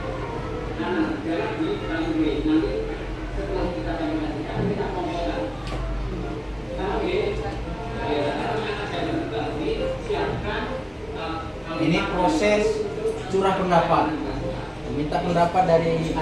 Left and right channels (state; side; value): identical; both; correlation 1.00